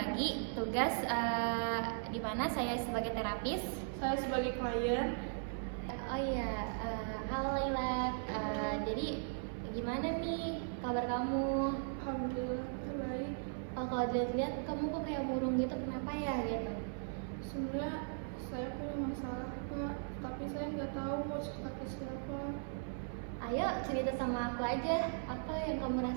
tugas di mana saya sebagai terapis, Saya sebagai klien. oh iya, halo Laila. Jadi gimana nih kabar kamu? Alhamdulillah baik. Kalau dilihat kamu kok kayak murung gitu, kenapa ya gitu? Sebenarnya saya punya masalah Kak, tapi saya nggak tahu mau cerita ke siapa. Ayo cerita sama aku aja, apa yang kamu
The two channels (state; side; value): silent; left; 52 dB below the other